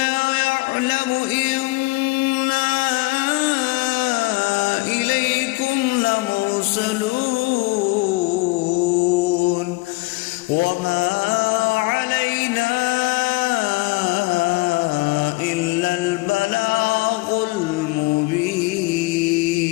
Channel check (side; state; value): right; quieter; 23.4 dB